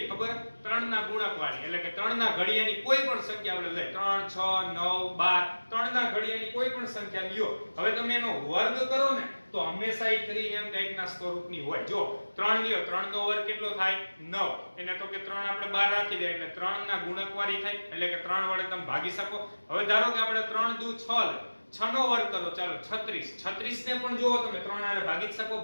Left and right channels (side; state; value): both; inverted; correlation -1.00